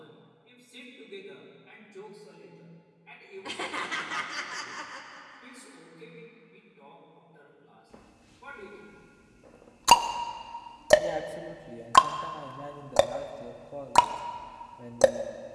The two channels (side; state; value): both; identical; correlation 1.00